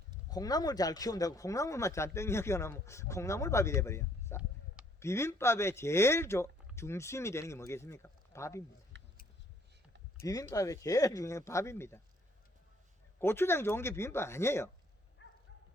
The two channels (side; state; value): both; normal; correlation 0.64